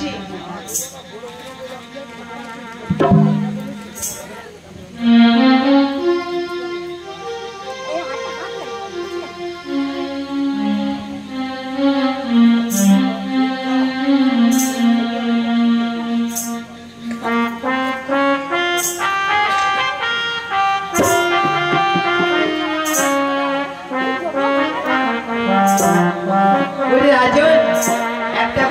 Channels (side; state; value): both; identical; correlation 1.00